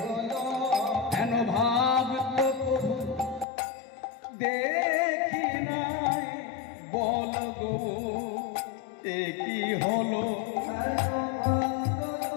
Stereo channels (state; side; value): drops out; right; at 3.5 s